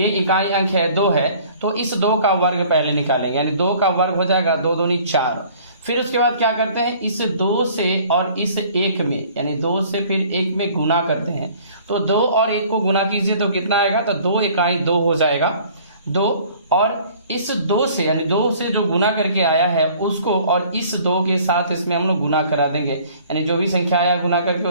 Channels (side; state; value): both; inverted; correlation -0.53